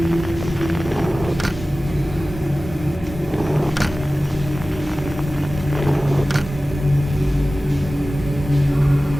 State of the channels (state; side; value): normal; both; correlation 0.97